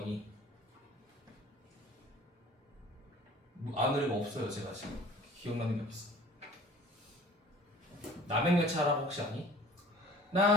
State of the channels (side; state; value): both; normal; correlation 0.48